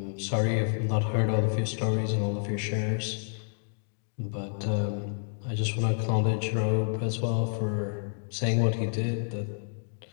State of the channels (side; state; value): right; silent; digital silence